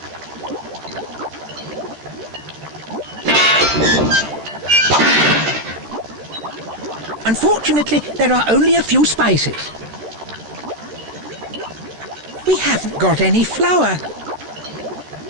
Unfortunately, there are only a few spices. We haven't got any flour.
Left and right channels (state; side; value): late; left; 13 ms